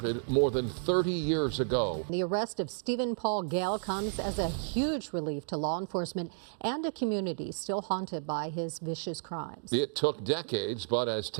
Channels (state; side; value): silent; left; digital silence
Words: more than 30 years ago. The arrest of Stephen Paul Gale comes as a huge relief to law enforcement and a community still haunted by his vicious crimes. It took decades, but as